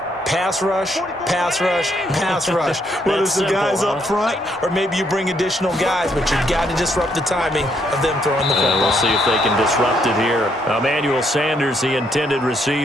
Pass rush, pass rush, pass rush. Whether it's the guys up front or maybe you bring additional guys, but you've got to disrupt the timing of them throwing the football. We'll see if they can disrupt it here. Emmanuel Sanders, the intended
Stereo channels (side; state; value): both; normal; correlation 0.73